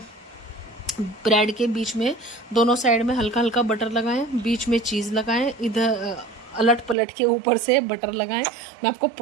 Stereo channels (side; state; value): left; drops out; at 7.0 s